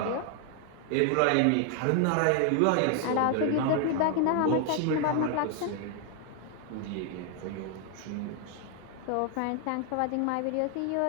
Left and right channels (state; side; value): different; both; correlation 0.00